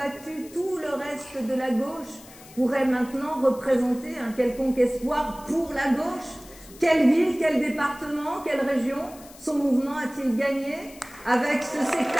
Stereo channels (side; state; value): left; noise; hiss, 21 dB below the sound